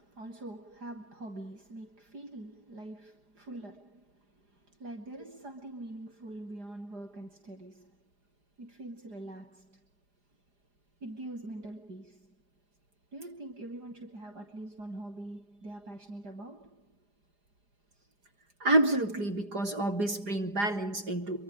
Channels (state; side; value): late; left; 4.9 ms